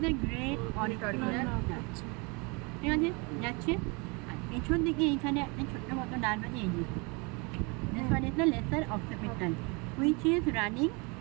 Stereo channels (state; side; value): quieter; left; 30.0 dB